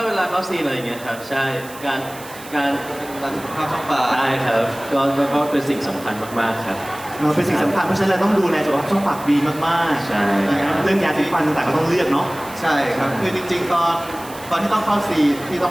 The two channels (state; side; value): noise; right; hiss, 17 dB below the sound